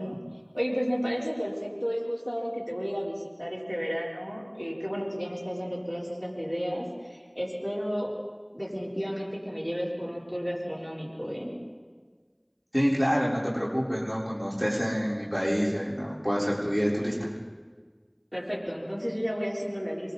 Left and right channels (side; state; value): both; identical; correlation 1.00